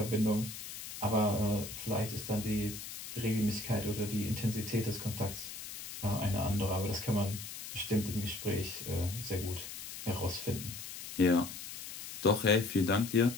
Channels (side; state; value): left; noise; hiss, 10 dB below the sound